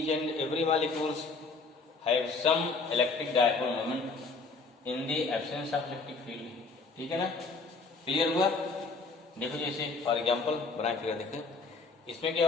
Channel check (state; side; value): quieter; right; 4.1 dB